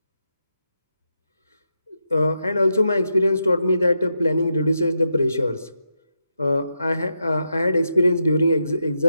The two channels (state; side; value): inverted; both; correlation -0.84